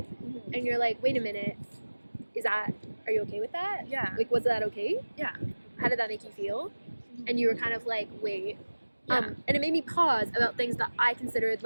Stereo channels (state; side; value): inverted; both; correlation -1.00